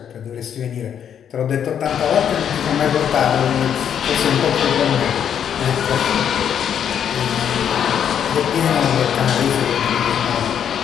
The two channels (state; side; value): quieter; right; 8.7 dB